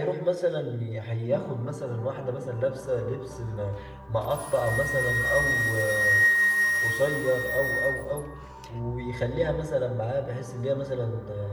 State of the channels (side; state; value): both; identical; correlation 1.00